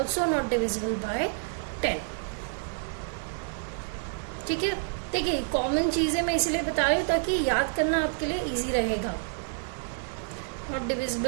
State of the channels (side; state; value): left; silent; digital silence